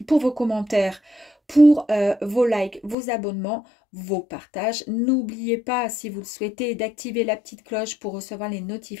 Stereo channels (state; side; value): drops out; right; at 3.0 s